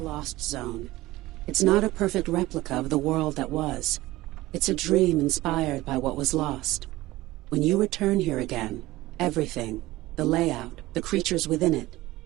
a lost zone. It's not a perfect replica of the world that was. It's a dream inspired by what was lost. When you return here again, everything, the layout, the creatures within it,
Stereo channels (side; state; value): left; quieter; 18.1 dB